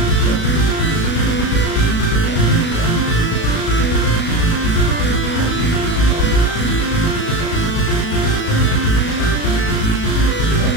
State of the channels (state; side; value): late; right; 37 ms